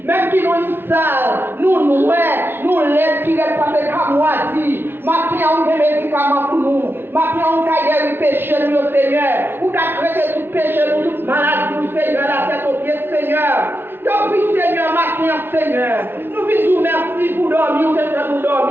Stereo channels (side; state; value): left; late; 0.11 ms